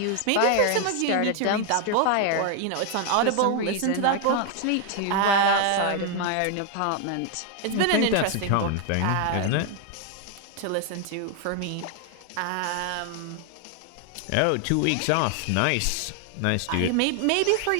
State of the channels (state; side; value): different; both; correlation 0.00